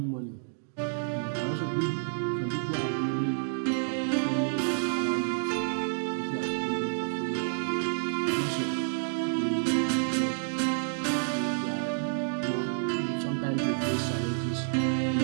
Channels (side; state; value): left; silent; digital silence